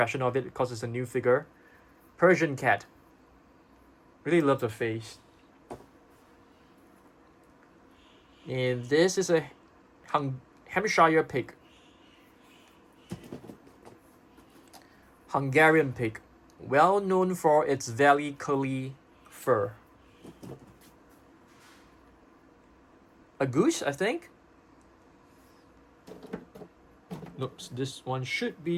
of it because it's a new figure. Persian cat. Really love the face. And this is a Hampshire pig. Hungarian pig. Well known for its very curly fur. A goose, I think. Nope, this one should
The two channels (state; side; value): identical; both; correlation 1.00